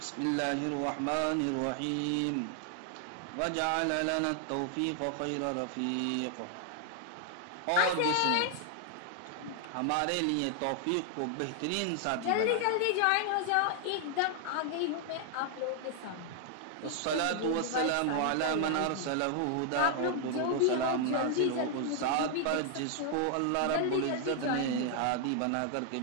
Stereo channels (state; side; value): different; both; correlation 0.00